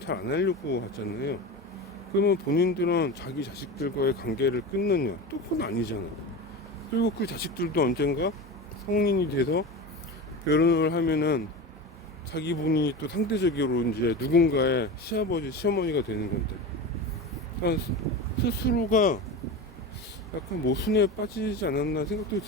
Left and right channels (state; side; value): normal; both; correlation 0.26